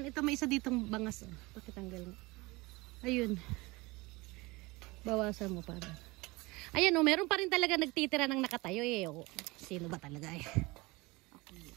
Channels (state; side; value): quieter; left; 23.1 dB